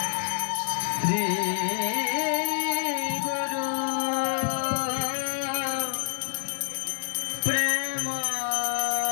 শ্রী গুরু প্রেম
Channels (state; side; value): silent; right; digital silence